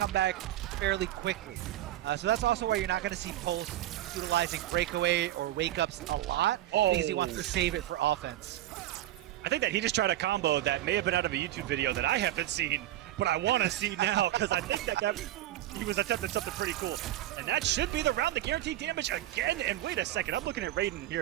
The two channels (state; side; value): quieter; left; 14.0 dB